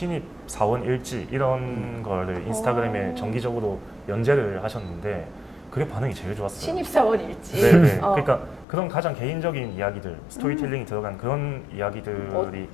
사원 일지 이런 거를 인스타그램에 정기적으로 연재를 하셨는데 그게 반응이 제일 좋았어요. 신입사원 일지? 네네. 그러니까 그런 가장 개인적인 이야기들, 스토리텔링이 들어간 그런 이야기들이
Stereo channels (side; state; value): right; drops out; at 8.7 s